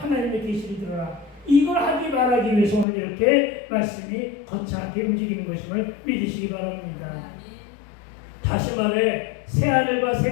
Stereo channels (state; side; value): drops out; right; at 2.9 s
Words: 계시를 들어라. 이걸 하기 말하기 위해서 오늘 이렇게 말씀이 거창하게 움직이는 것임을 믿으시기 바랍니다. 다시 말해, 새하늘과